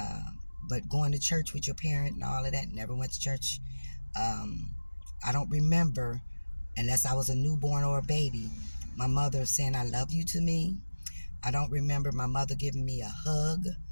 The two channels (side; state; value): both; inverted; correlation -1.00